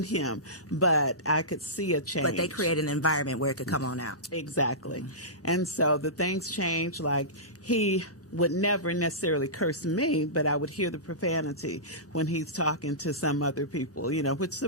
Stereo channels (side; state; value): both; normal; correlation -0.20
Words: him. But I could see a change. But they create an environment where it could come on out. Exactly. And so the things changed. Like he would never necessarily curse me, but I would hear the profanity when he's talking to some other people, which